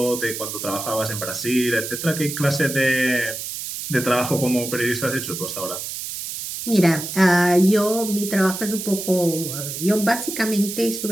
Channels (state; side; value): noise; right; hiss, 7 dB below the sound